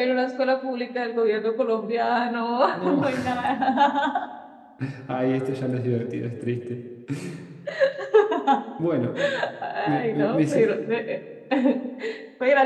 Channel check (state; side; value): identical; both; correlation 1.00